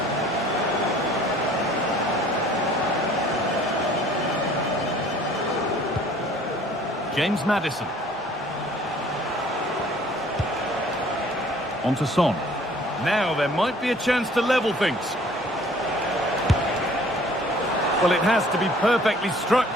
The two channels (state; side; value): normal; both; correlation 0.54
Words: James Maddison. On to Son. Now there might be a chance to level things. Well, it has to be perfectly struck